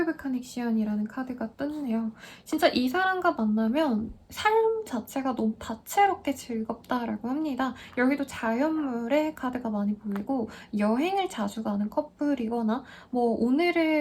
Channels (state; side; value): identical; both; correlation 1.00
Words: 오브 커넥션이라는 카드가 떴네요. 진짜 이 사람과 만나면 삶 자체가 너무 다채롭게 즐겁다라고 합니다. 여기도 자연물의 카드가 많이 보이고 여행을 자주 가는 커플이거나 뭐